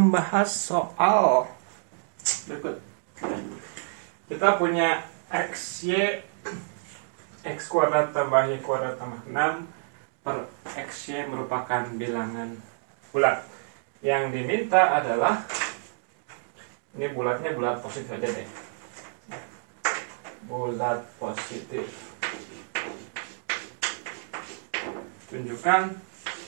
soal berikut. Kita punya XY X kuadrat tambah Y kuadrat tambah 6 per XY merupakan bilangan bulat. Yang diminta adalah, ini bulatnya bulat positif aja deh, bulat positif. Tunjukkan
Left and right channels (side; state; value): left; silent; digital silence